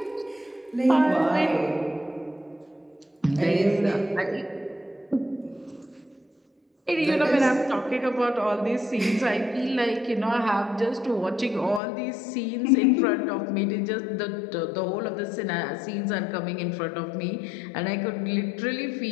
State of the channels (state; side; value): drops out; right; at 11.8 s